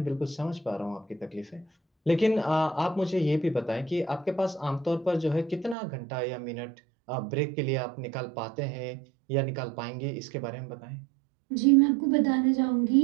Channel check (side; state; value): left; drops out; at 5.8 s